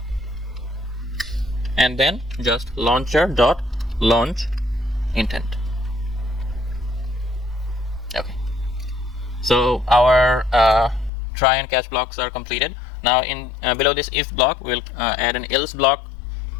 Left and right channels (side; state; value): right; drops out; at 11.1 s